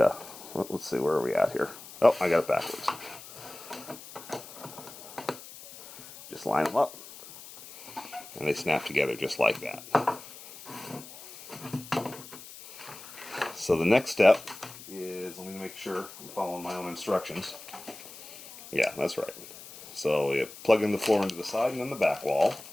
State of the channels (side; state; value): left; noise; hiss, 16 dB below the sound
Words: of, let's see, where are we at here? Oh, I got it backwards. Just line them up, and they snap together just like that. So the next step is, let me make sure I'm following my own instructions. Yeah, that's right. So you plug in the floor into the side and then the back wall.